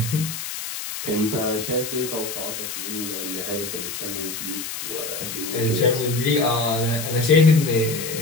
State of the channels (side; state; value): left; noise; hiss, 6 dB below the sound